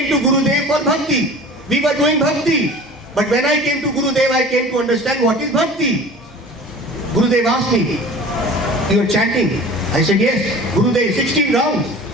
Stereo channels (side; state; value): both; normal; correlation 0.41